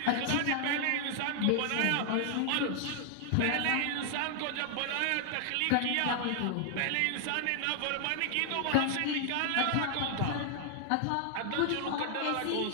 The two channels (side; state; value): both; different; correlation 0.00